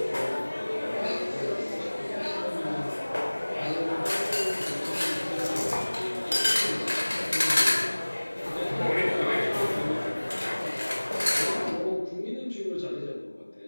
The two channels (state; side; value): inverted; both; correlation -1.00